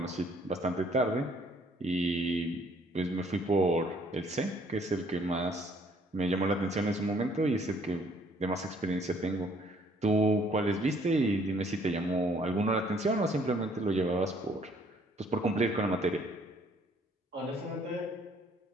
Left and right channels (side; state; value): both; normal; correlation 0.62